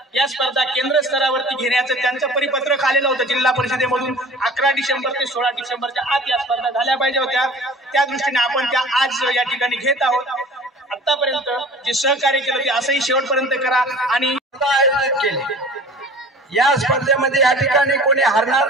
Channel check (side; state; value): both; normal; correlation 0.43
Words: या स्पर्धा केंद्र स्तरावरती घेण्याचं त्यांचं परिपत्रक आलेलं होतं जिल्हा परिषदेमधून। 11 डिसेंबर ते 16 डिसेंबरच्या आत या स्पर्धा झाल्या पाहिजे होत्या। त्या दृष्टीने आपण त्या आज या ठिकाणी घेत आहोत। आतापर्यंत जे सहकार्य केलं ते असंही शेवटपर्यंत करा आणि आयोजित केले। या स्पर्धेमध्ये या ठिकाणी कोणी हरणार